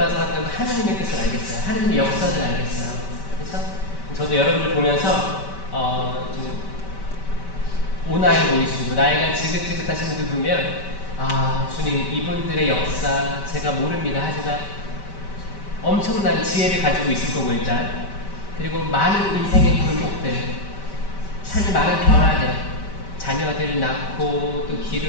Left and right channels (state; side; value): late; right; 5.2 ms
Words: 살았던 하느님의 뜻을 알겠어요. 하느님의 역사를 알겠어요. 그래서 저도 여러분들 보면서 좀 오나이 보이시고 나이가 지긋지긋하신 분들 보면 아, 주님, 이분들의 역사 제가 모릅니다. 하지만 엄청난 지혜를 가지고 있을 거고 일단. 그리고 많은 인생의 굴곡들, 삶의 많은 변화들, 자녀들 낳고 또